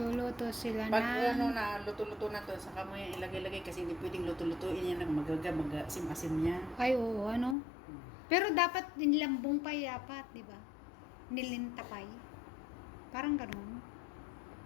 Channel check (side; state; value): right; drops out; at 7.6 s